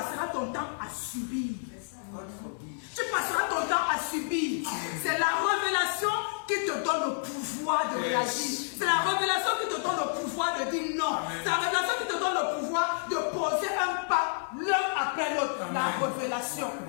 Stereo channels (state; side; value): silent; right; 58 dB below the other